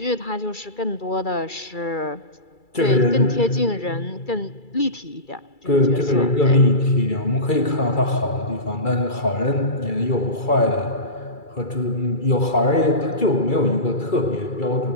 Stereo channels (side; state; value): right; late; 2.3 ms